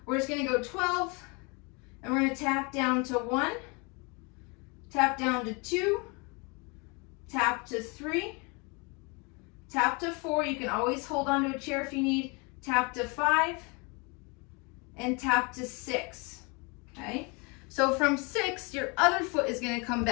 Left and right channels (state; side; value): quieter; right; 30.1 dB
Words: We're just gonna go 12, and we're gonna tap down to 1, tap down to 2, tap to 3, tap to 4. You can always hold onto a chair if you need. Tap to 5, and tap to 6, okay? So from 6, your other foot is gonna come